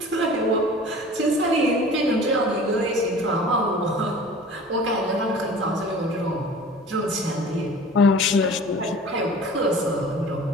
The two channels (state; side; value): normal; both; correlation 0.43